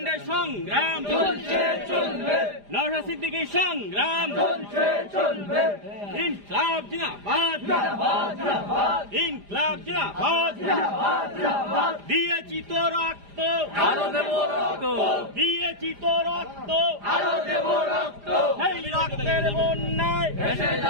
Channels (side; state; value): left; late; 4.9 ms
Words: সংগ্রাম নওশাদ সিদ্দিকীর সংগ্রাম ইনকলাব জিন্দাবাদ, ইনকলাব জিন্দাবাদ। দিয়েছি তো রক্ত, আরো দেব রক্ত, দিয়েছি তো রক্ত, আরো দেব রক্ত। সেই রক্তের বন্যায় ভেসে